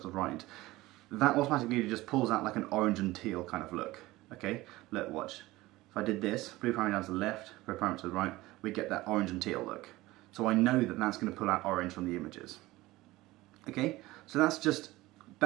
to the right. That automatically just pulls out like an orange and teal kind of look. Okay, look, watch. If I did this, blue primary down to the left, red primary to the right, we get that orange and teal look. So I know that that's going to pull out orange from the images. Okay, so that's just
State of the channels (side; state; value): left; quieter; 18.8 dB